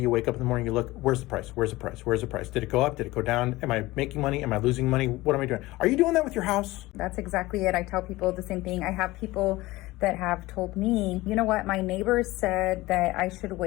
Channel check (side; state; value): right; quieter; 19.3 dB